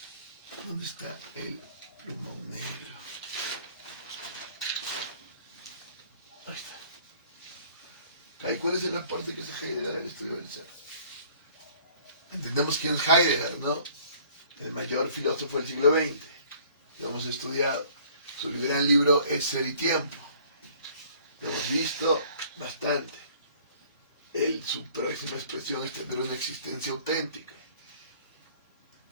¿Dónde está el plumón negro? Ahí está. ¿Cuál es el aporte que hace Heidegger al estudio del ser? Entendemos quién es Heidegger, ¿no? El mayor filósofo del siglo XX. Lo hemos estudiado. Su gran libro es Ser y Tiempo. Lo hemos visto bastante. Su próxima expresión es tener una existencia auténtica.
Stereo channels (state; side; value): inverted; both; correlation -0.55